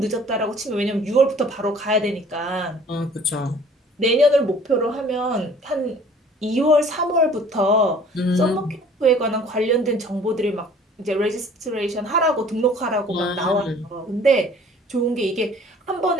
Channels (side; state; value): both; normal; correlation 0.52